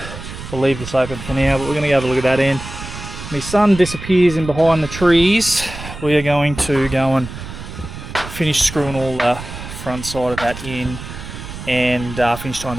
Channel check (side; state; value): right; noise; rumble, 11 dB below the sound